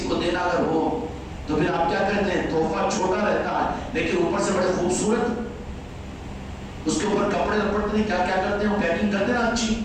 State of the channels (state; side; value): identical; both; correlation 1.00